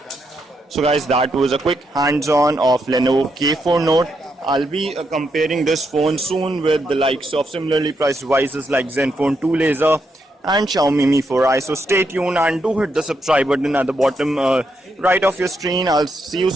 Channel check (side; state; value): both; normal; correlation 0.80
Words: So guys, that was a quick hands-on of Lenovo K4 Note. I'll be comparing this phone soon with the likes of similarly priced devices like Zenfone 2 Laser and Xiaomi Mi 4i. So stay tuned and do hit the subscribe button at the bottom right of your screen. I'll see you